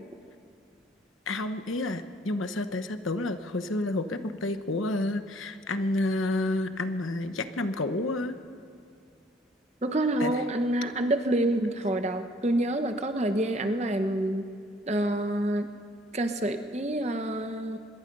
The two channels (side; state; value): both; normal; correlation 0.60